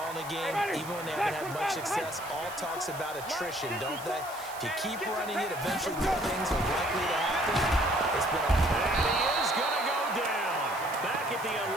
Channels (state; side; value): noise; right; hiss, 15 dB below the sound